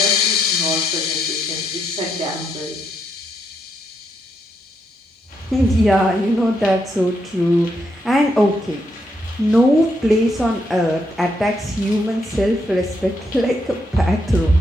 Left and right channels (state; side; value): normal; both; correlation 0.79